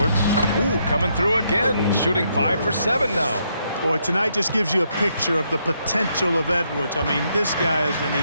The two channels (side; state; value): both; inverted; correlation -0.76